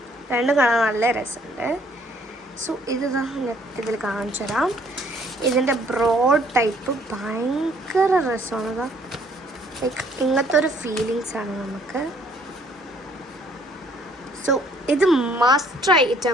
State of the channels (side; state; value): both; normal; correlation 0.62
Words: രണ്ടും കാണാൻ നല്ല രസമുണ്ട്. സോ ഇത് ഇതിൽ കാണിച്ചു തരാം. ഇതിൻ്റെ ബ്രോഡ് ടൈപ്പ് ഭയങ്കര രസമാണ്. ലൈക്ക് ഇങ്ങനത്തെ ഒരു ഫീലിങ്സാണ് നമുക്ക്. സോ ഇത് മസ്റ്റ് ട്രൈ